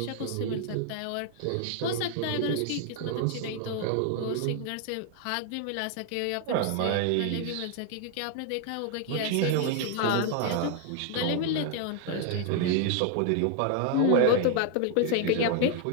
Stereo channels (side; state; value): both; different; correlation 0.00